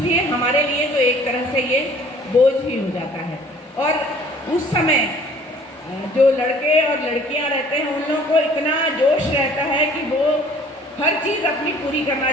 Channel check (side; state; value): both; normal; correlation 0.53